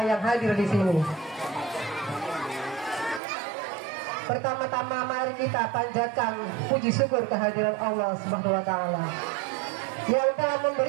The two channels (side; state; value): left; drops out; at 3.2 s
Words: yang hadir di sini. Pertama-tama mari kita panjatkan puji syukur kehadiran Allah Subhanahu wa taala yang telah